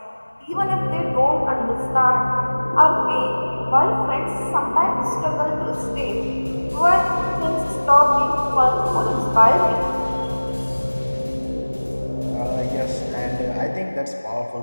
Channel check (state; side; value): inverted; both; correlation -1.00